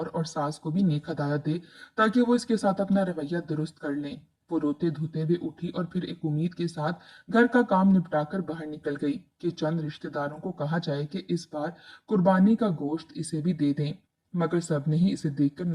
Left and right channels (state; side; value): identical; both; correlation 1.00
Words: और सास को भी नेक हदायत दे ताकि वो इसके साथ अपना रवैया दुरुस्त कर लें। वो रोते धोते हुए उठी और फिर एक उम्मीद के साथ घर का काम निपटाकर बाहर निकल गई कि चंद रिश्तेदारों को कहा जाए कि इस बार कुर्बानी का गोश्त इसे भी दे दें। मगर सबने ही इसे देखकर